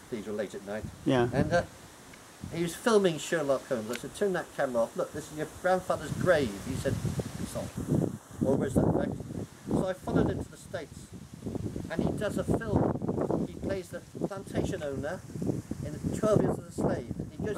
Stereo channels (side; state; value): both; identical; correlation 1.00